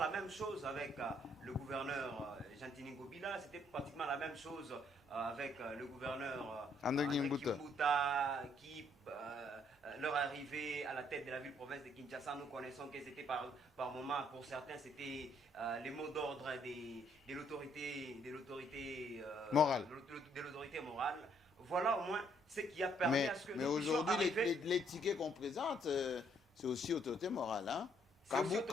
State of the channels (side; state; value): both; normal; correlation 0.68